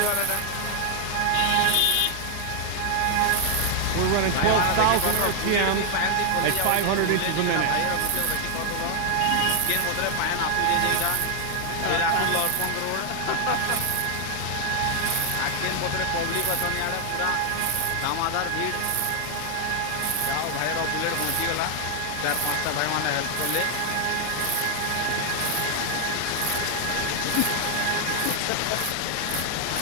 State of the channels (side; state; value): both; different; correlation 0.00